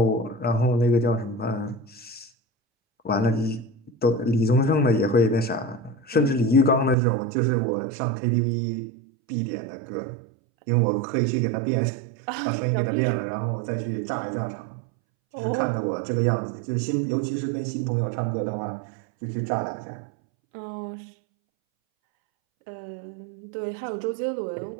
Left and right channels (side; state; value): left; drops out; at 7.0 s